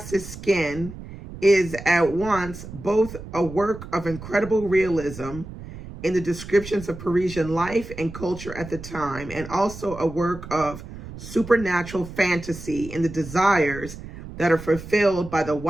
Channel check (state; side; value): noise; right; rumble, 13 dB below the sound